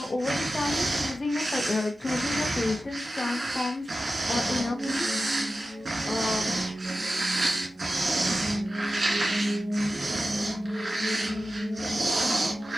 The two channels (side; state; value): both; normal; correlation 0.94